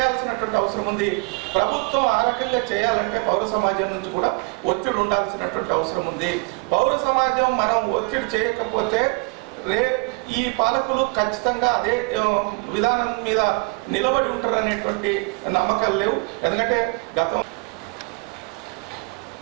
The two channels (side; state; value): left; quieter; 31.6 dB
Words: అవసరం ఉంది. ప్రభుత్వం ఆ రకంగా చేయాలంటే పౌర సమాజం నుంచి కూడా ఒత్తిడి ఉండాల్సినటువంటి అవసరం ఉంది. పౌర సమాజం మనం ఒత్తిడి చేయకపోతే ఈ పాలకులు ఖచ్చితంగా అదే విధానం మీద నిలబడి ఉంటారనేటువంటి నమ్మకాలు లేవు. ఎందుకంటే గతం